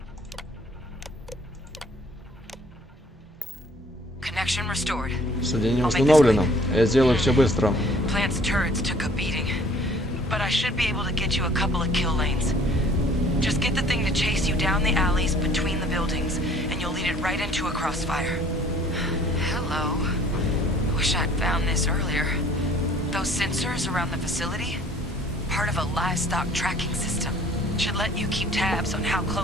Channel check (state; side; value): normal; both; correlation 0.55